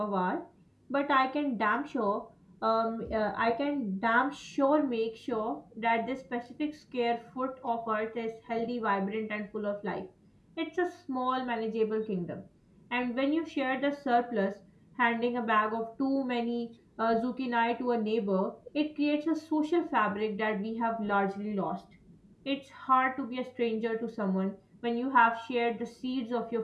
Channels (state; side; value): identical; both; correlation 1.00